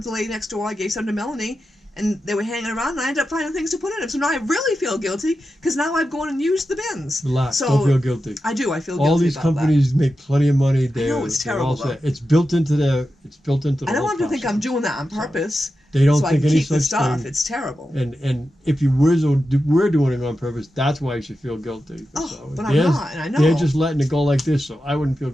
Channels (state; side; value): normal; both; correlation 0.91